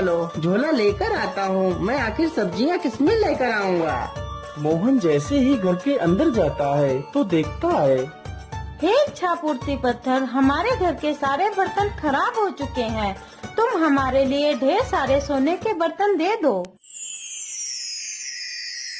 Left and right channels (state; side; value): identical; both; correlation 1.00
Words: झोला लेकर आता हूँ। मैं आखिर सब्जियाँ किसमें लेकर आऊँगा? मोहन जैसे ही घर के अंदर जाता है तो देखता है, हे इच्छा पूर्ति पत्थर, हमारे घर के सारे बर्तन खराब हो चुके हैं। तुम हमारे लिए ढेर सारे सोने के बर्तन दे दो।